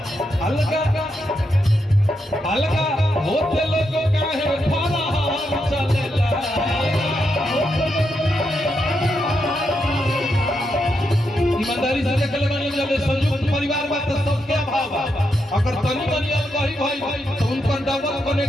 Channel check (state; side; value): normal; both; correlation 0.82